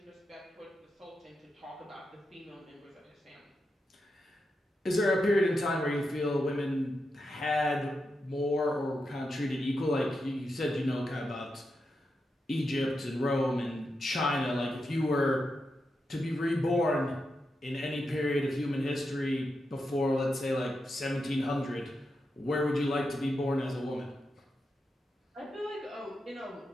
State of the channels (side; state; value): both; normal; correlation 0.87